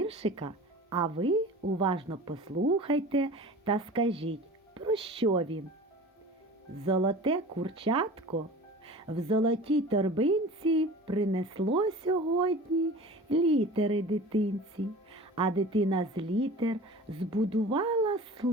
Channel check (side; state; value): both; normal; correlation 0.39